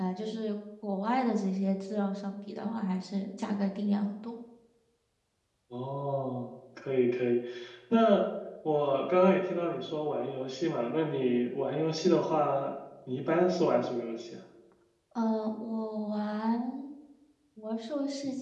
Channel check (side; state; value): both; identical; correlation 1.00